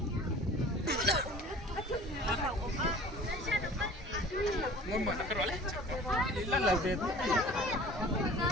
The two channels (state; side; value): normal; both; correlation 0.45